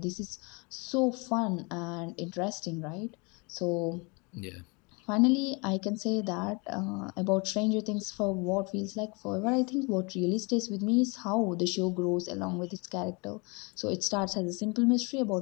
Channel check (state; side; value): quieter; right; 30.0 dB